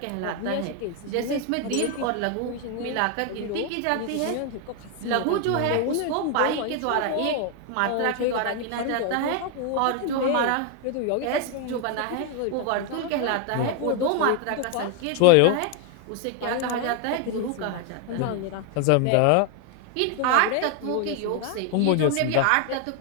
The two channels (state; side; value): different; both; correlation 0.01